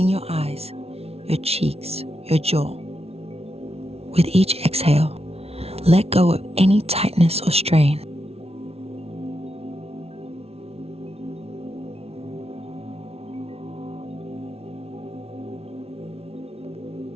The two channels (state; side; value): late; left; 0.30 ms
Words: your eyes, your cheeks, your jaw. With each exhale, let go of any tightness or strain.